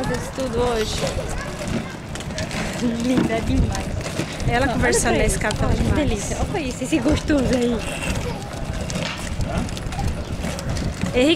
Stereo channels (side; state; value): both; identical; correlation 1.00